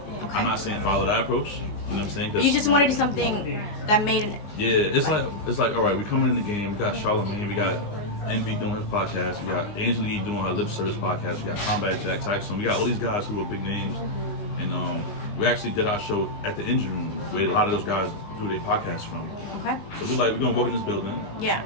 Okay. I'm not saying follow that approch. You know what I'm saying? You just wanted to do something that made it. Yeah, it's like all right, we're coming in the game. We got Charlamagne, we got Envy doing his podcast, we got Angela doing her lip service podcast, we got Combat Jack Tyson, we got all these guys who are big names, and we actually did our show at the engine room where a lot of those guys do their podcasts from. Okay. So we're gonna walk in this building. Yeah.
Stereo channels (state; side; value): late; right; 19 ms